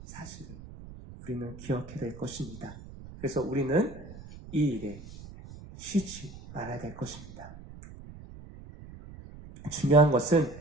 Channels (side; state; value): right; noise; rumble, 15 dB below the sound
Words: 사실을 우리는 기억해야 될 것입니다. 그래서 우리는 이 일에 쉬지 말아야 될 것입니다. 중요한 것은